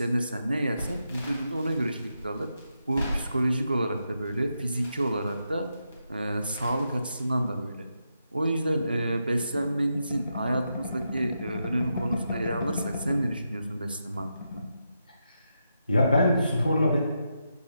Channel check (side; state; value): both; inverted; correlation -0.85